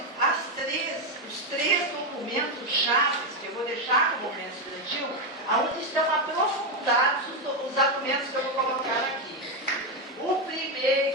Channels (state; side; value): normal; both; correlation 0.07